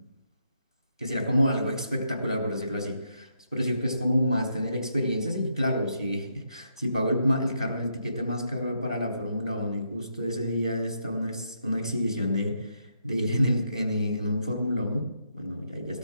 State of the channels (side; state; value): both; inverted; correlation -0.78